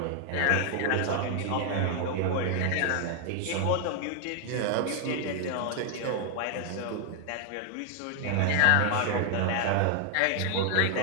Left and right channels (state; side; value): different; both; correlation 0.00